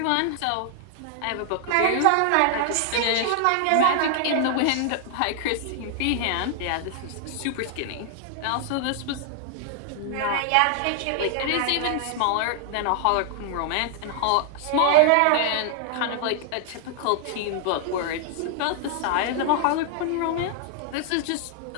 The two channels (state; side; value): different; both; correlation 0.00